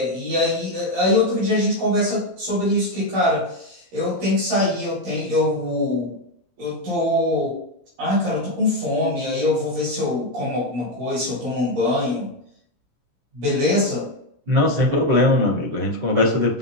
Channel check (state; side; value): late; left; 17 ms